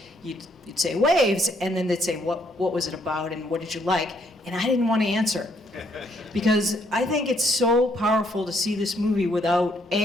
You'd say Waves, and then they'd say, what was it about and what did you like? And I didn't want to answer. Because I think it's so powerful to see this movie without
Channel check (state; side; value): normal; both; correlation 0.70